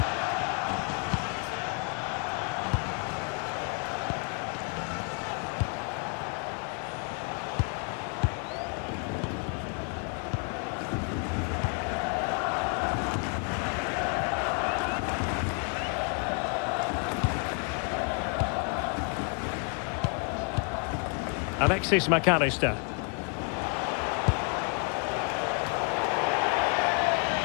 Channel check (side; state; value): right; quieter; 38.5 dB